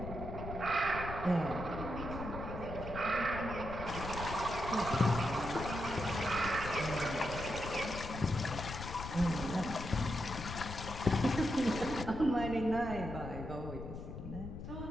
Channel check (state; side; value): noise; left; rumble, 8 dB below the sound